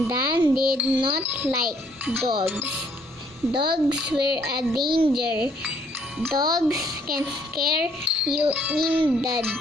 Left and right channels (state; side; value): normal; both; correlation 0.65